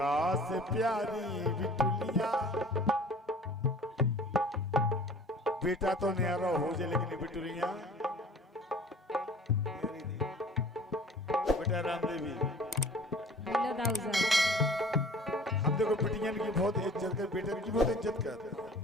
से प्यारी बिटुलिया, बेटा तो न्यारा हो जाए लेकिन बिटुलिया बेटा रामदेवी, हम देखो बिटियन की बहुत इज्जत कर, बेटन की बहुत इज्जत करते हैं,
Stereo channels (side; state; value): both; normal; correlation 0.47